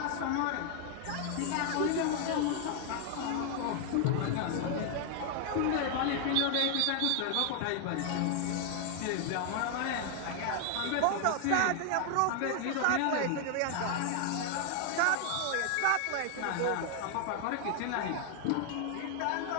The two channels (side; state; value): both; different; correlation 0.00